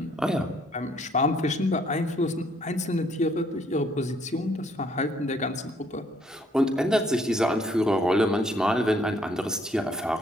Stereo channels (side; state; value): both; normal; correlation 0.66